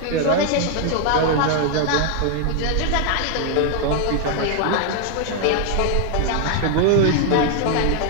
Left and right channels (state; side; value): different; both; correlation 0.00